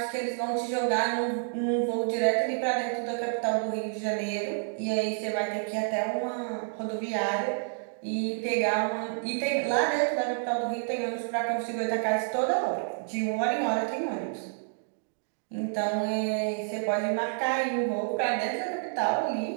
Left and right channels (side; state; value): left; silent; digital silence